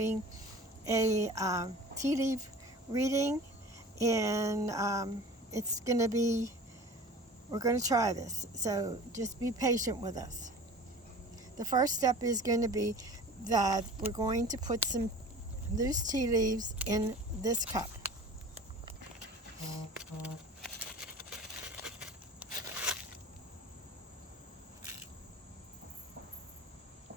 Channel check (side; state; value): both; normal; correlation 0.40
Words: a tea leaf reading, and it's going to be, we're going to try this, so just be patient with us. The first step is going to be that we're going to put some loose tea leaves in this cup.